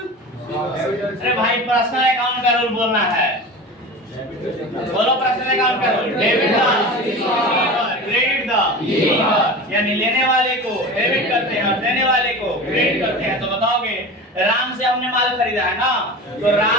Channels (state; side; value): normal; both; correlation 0.32